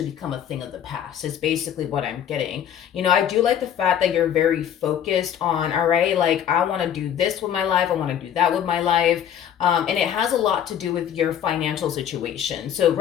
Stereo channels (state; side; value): quieter; right; 9.5 dB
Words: become a thing of the past. Is basically what I'm getting. You know, I do like the fact that you're very focused on, all right, like I want to do this with my life, I want to do that with my life. And it has a lot to do with your financial situation. So